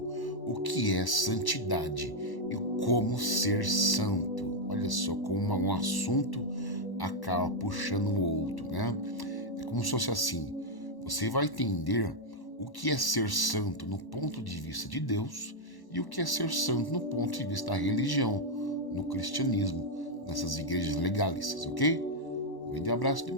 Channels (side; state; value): right; late; 1.1 ms